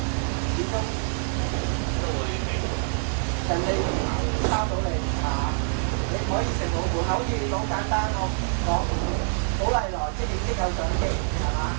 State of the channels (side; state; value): left; silent; digital silence